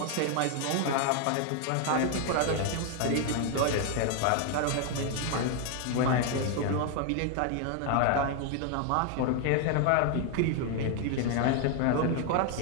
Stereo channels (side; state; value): both; different; correlation 0.01